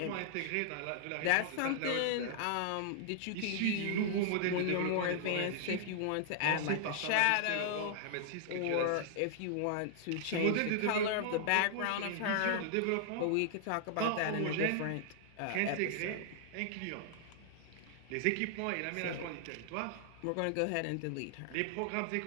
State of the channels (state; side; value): different; both; correlation -0.01